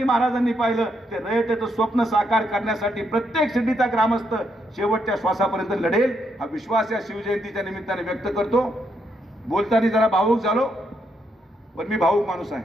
महाराजांनी पाहिलं, ते रयतेचं स्वप्न साकार करण्यासाठी प्रत्येक शिर्डीचा ग्रामस्थ शेवटच्या श्वासापर्यंत लढेल, हा विश्वास या शिवजयंतीच्या निमित्ताने व्यक्त करतो. बोलताना जरा भावूक झालो, पण मी भावूक माणूस आहे.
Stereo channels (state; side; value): normal; both; correlation 0.78